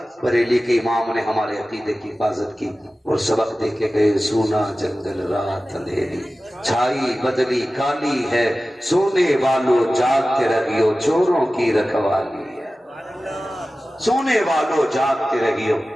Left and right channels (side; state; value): both; normal; correlation 0.96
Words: बरेली के इमाम ने हमारे अकीदे की हिफाजत की और सबक दे के गए, सोना जंगल रात अंधेरी, छाई बदली काली है, सोने वालों जागते रहियो, चोरों की रखवाली है। सोने वालों जागते रहियो,